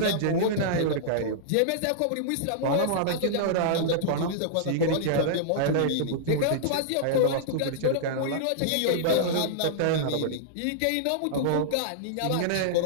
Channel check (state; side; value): different; both; correlation -0.02